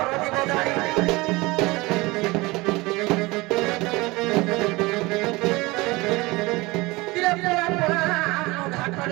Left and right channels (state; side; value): quieter; left; 22.4 dB